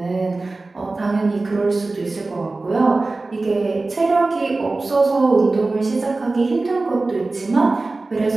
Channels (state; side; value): quieter; left; 3.3 dB